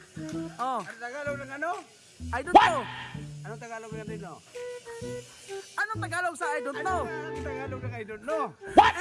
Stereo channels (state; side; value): identical; both; correlation 1.00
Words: Ano Tagalog ng ano? I don't know. Anong Tagalog ng I don't know? Anong Tagalog sa I don't know? Anong Tagalog ng I don't know?